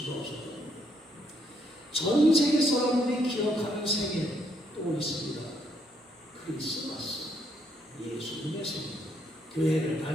없을 겁니다. 전 세계 사람들이 기억하는 생일 또 있습니다. 크리스마스, 예수님의 생일. 교회를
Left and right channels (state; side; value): normal; both; correlation 0.73